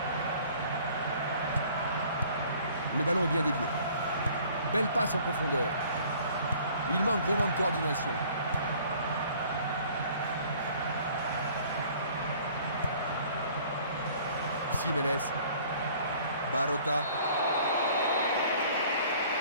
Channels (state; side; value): inverted; both; correlation -0.53